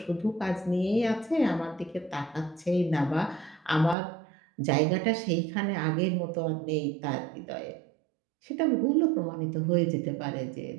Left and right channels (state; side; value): drops out; left; at 4.0 s